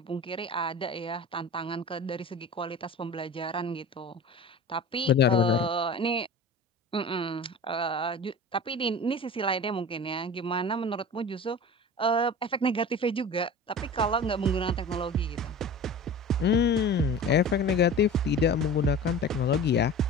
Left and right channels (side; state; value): both; normal; correlation 0.36